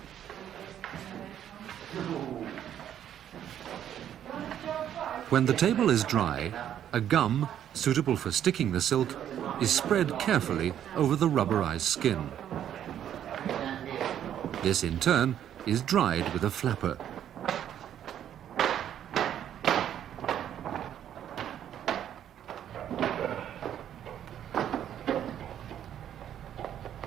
When the table is dry, a gum, suitable for sticking the silk, is spread carefully over the rubberized skin. This, in turn, is dried with a flapper.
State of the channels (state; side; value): quieter; left; 10.3 dB